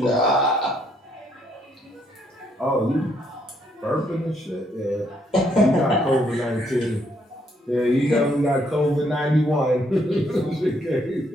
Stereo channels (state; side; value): normal; both; correlation 0.71